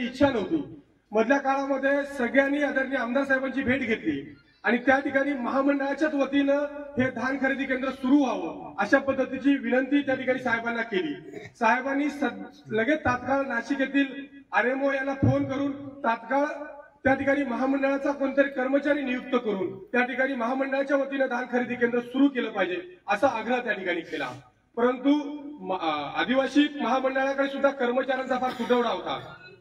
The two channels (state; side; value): identical; both; correlation 1.00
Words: इच्छा नव्हती. मधल्या काळामध्ये सगळ्यांनी आदरणीय आमदार साहेबांची भेट घेतली आणि त्या ठिकाणी महामंडळाच्याच वतीनं हे धान खरेदी केंद्र सुरू व्हावं अशा पद्धतीची विनंती त्या ठिकाणी साहेबांना केली. साहेबांनी लगेच तात्काळ नाशिक येथील आरएमओ यांना फोन करून तात्काळ त्या ठिकाणी महामंडळाचा कोणतरी कर्मचारी नियुक्त करून त्या ठिकाणी महामंडळाच्या वतीनं धान खरेदी केंद्र सुरू केलं पाहिजे असा आग्रह त्या ठिकाणी केला. परंतु आदिवासी महामंडळाकडे सुद्धा कर्मचाऱ्यांचा फार तुटवडा होता.